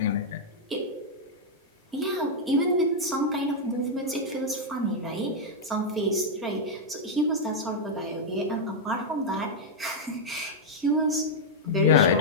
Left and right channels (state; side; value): normal; both; correlation -0.03